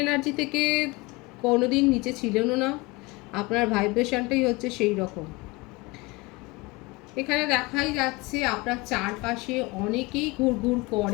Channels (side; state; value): right; quieter; 23.7 dB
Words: এনার্জি থেকে কোনোদিন নিচে ছিলেনও না, আপনার ভাইব্রেশনটাই হচ্ছে সেই রকম। এখানে দেখাই যাচ্ছে আপনার চারপাশে অনেকেই ঘুরঘুর